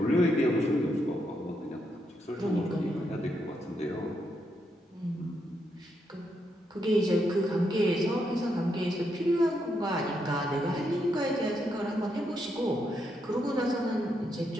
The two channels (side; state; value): both; normal; correlation 0.80